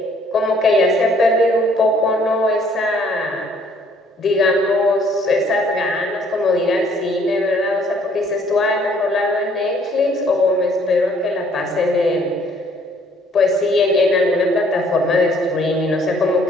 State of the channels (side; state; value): both; normal; correlation 0.61